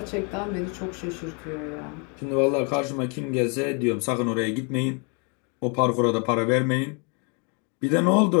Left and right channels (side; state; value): right; quieter; 35.2 dB